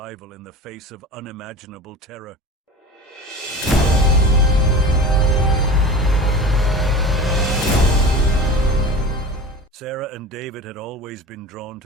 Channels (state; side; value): normal; both; correlation 0.34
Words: in the face of unimaginable terror. Sarah and David had always been drawn